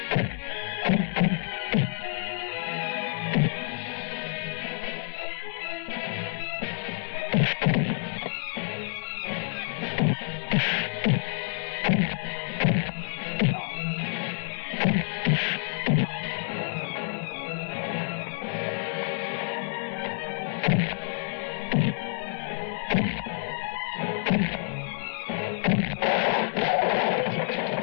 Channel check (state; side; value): silent; right; 59 dB below the other